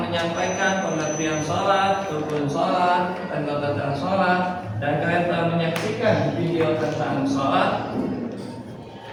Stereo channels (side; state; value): both; identical; correlation 1.00